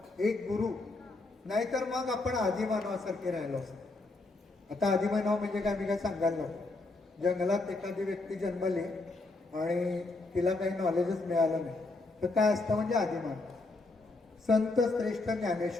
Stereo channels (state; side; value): quieter; right; 3.2 dB